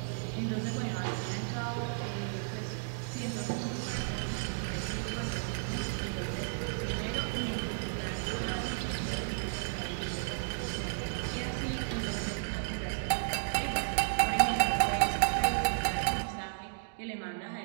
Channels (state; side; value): silent; left; digital silence